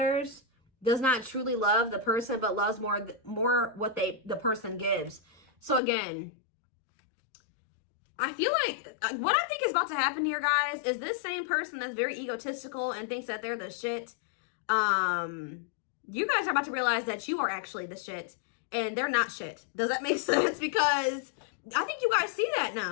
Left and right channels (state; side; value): drops out; right; at 5.8 s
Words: Does not truly love the person, but loves more what the person gives. So again, I feel like what I think is about to happen here, guys, is this same person that's very egotistical and thinks that they're the shit. You guys are about to realize that you are actually the shit and they're not shit. Does that make sense? Because I think you guys see that